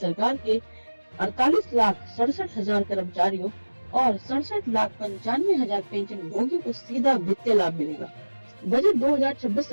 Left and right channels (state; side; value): inverted; both; correlation -1.00